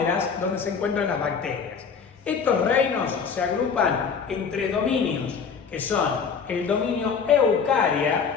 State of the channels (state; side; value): quieter; right; 6.1 dB